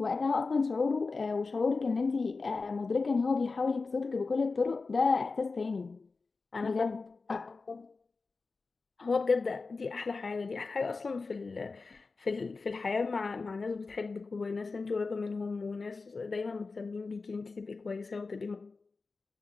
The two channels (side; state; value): right; quieter; 4.1 dB